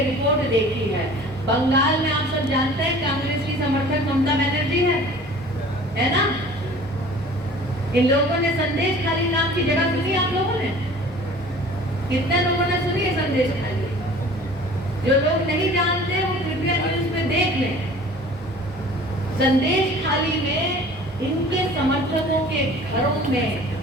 रिपोर्ट देखी है। बंगाल में आप सब जानते हैं कांग्रेस की समर्थक ममता बनर्जी है ना? इन लोगों ने संदेश खाली नाम की जगह सुनी? आप लोगों ने कितने लोगों ने सुनी है संदेश खाली? जो लोग नहीं जानते वो कृपया न्यूज में देख लें। संदेश खाली में इनके समर्थकों के घरों में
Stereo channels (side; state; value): both; normal; correlation 0.46